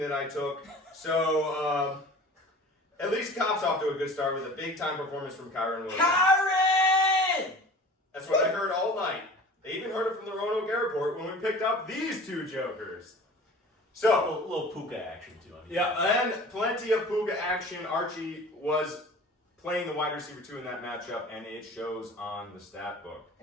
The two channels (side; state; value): both; normal; correlation 0.42